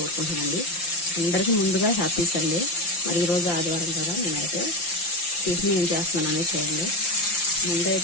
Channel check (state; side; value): late; right; 5.8 ms